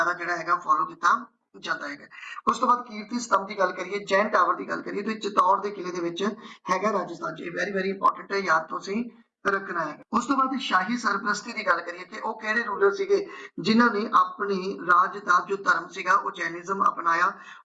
ਜਿਹੜਾ ਹੈਗਾ ਫੋਲੋ ਕੀਤਾ ਜਾਂਦਾ ਹੈਗਾ। ਉਸ ਤੋਂ ਬਾਅਦ ਕੀਰਤੀ ਸਤੰਭ ਦੀ ਗੱਲ ਕਰੀਏ, ਜੈਨ ਟਾਵਰ ਦੀ ਗੱਲ ਕਰੀਏ ਤਾਂ ਚਿਤੌੜ ਦੇ ਕਿਲੇ ਦੇ ਵਿੱਚ ਹੈਗਾ ਰਾਜਸਥਾਨ ਚ। ਇਹ ਵੈਰੀ ਇੰਪੋਰਟੈਂਟ ਹੈ, ਯਾਦ ਤੁਸੀਂ ਰੱਖਣਾ ਹੈ। ਉਸ ਤੋਂ ਬਾਅਦ ਸ਼ਾਹੀ ਸਰਪ੍ਰਸਤੀ ਦੀ ਗੱਲ ਕਰੀਏ ਕਿ ਉਹ ਕਿਹੜੇ ਰੂਲਰ ਸੀਗੇ ਜਿਨ੍ਹਾਂ ਨੇ ਆਪਣੇ ਰਾਜ ਦਾ ਜੋ ਧਰਮ ਸੀਗਾ ਉਹ ਜੈਨਿਜ਼ਮ ਅਪਣਾਇਆ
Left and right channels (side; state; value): both; identical; correlation 1.00